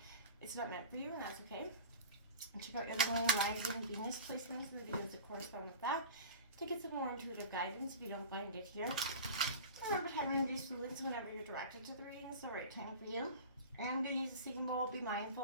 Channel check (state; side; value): inverted; both; correlation -0.35